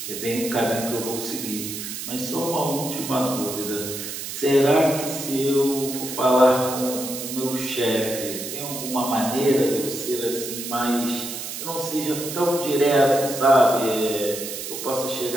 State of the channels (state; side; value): noise; right; hiss, 7 dB below the sound